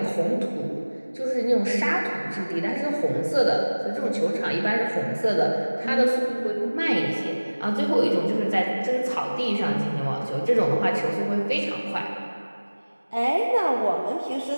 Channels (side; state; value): both; inverted; correlation -1.00